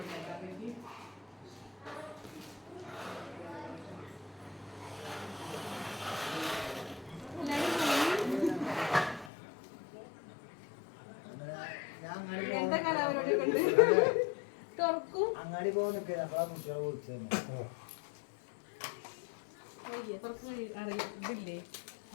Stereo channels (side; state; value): right; drops out; at 9.3 s